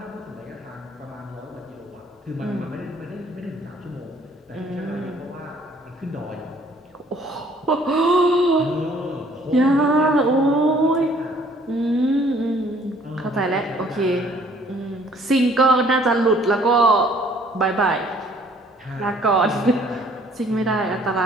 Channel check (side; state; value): both; normal; correlation 0.59